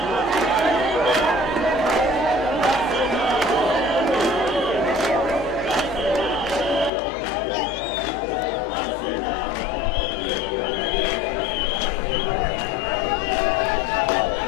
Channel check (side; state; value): right; drops out; at 6.9 s